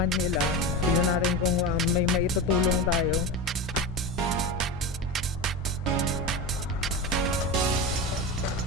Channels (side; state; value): both; normal; correlation 0.22